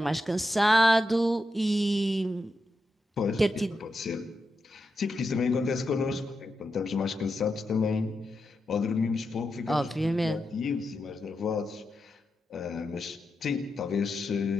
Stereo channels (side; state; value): both; normal; correlation 0.87